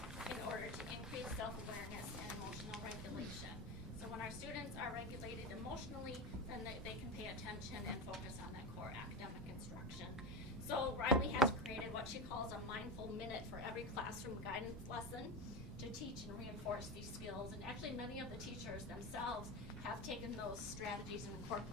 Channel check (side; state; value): both; normal; correlation 0.20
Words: in order to increase self-awareness and emotional regulation. So when our students are regulated emotionally, then they can pay attention and focus on that core academic instruction. So Riley has created what she calls a mindful minute for every classroom guidance lesson to teach and reinforce these skills. And actually many of the teachers themselves have taken those strategies and